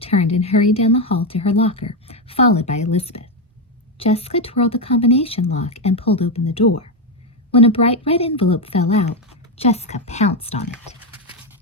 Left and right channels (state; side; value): normal; both; correlation 0.07